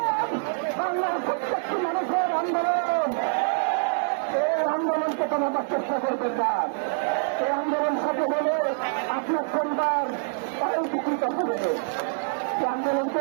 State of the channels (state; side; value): silent; left; digital silence